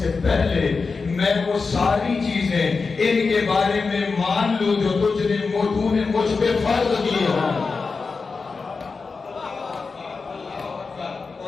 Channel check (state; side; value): quieter; right; 4.5 dB